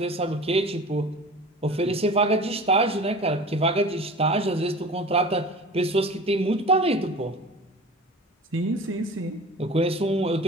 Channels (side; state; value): both; normal; correlation 0.38